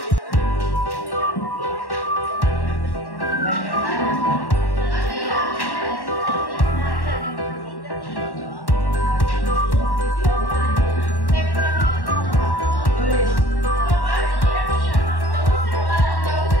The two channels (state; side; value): late; right; 1.1 ms